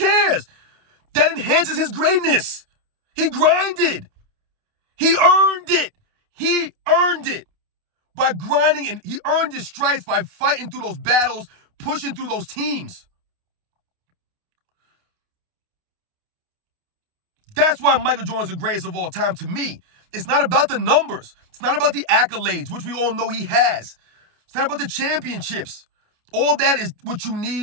That enhances his greatness. He grinded. He earned it. He earned it by grinding, and he earned his stripes by fighting through those battles, pushing through those teams. That's why Michael Jordan's the greatest of all time to me. It's not about the numbers. It's not about the accolades, which we all know he has. It's not about the championships. All that is what you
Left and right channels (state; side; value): late; left; 28 ms